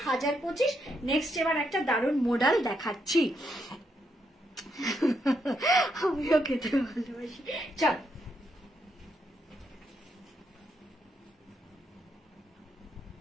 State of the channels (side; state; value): both; normal; correlation 0.78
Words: 1025। নেক্সট এবার একটা দারুণ মডেল দেখাচ্ছি। আমিও খেতে ভালোবাসি। চল